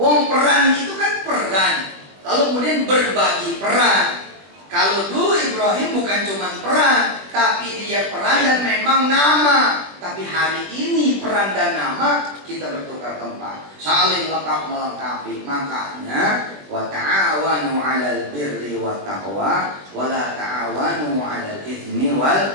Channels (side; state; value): left; late; 21 ms